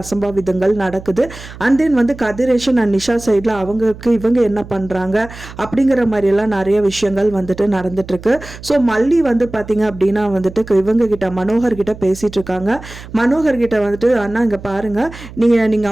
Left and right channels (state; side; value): noise; right; hum, 16 dB below the sound